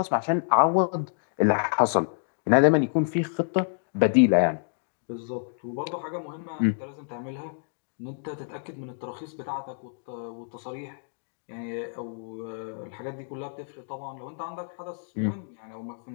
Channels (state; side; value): silent; right; digital silence